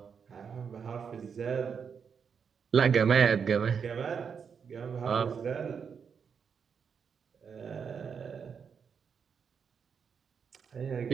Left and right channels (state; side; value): quieter; left; 6.6 dB